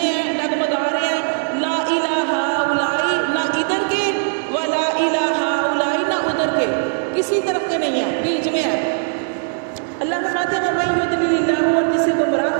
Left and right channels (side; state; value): left; silent; digital silence